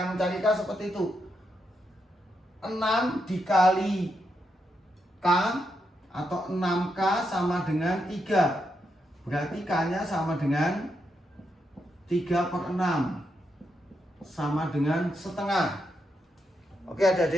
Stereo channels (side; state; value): both; normal; correlation 0.82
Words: mencari K seperti itu. 6 dikali K atau 6K sama dengan 3. Berarti K-nya sama dengan 3/6. Sama dengan setengah. Oke